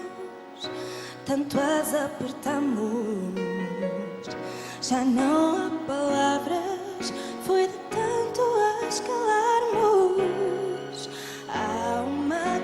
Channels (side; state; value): both; identical; correlation 1.00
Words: tanto as apertamos, já não há palavras, foi de tanto as calarmos. Há uma